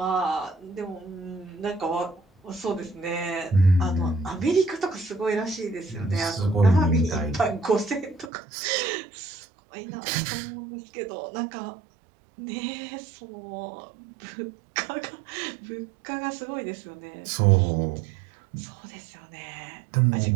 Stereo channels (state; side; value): drops out; left; at 8.3 s